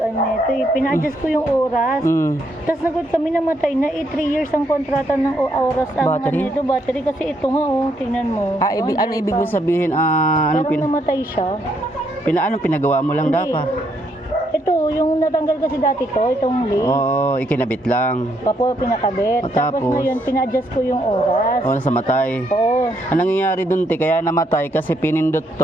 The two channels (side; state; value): both; normal; correlation 0.74